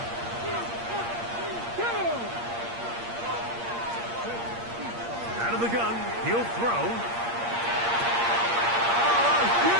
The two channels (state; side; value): late; left; 8.6 ms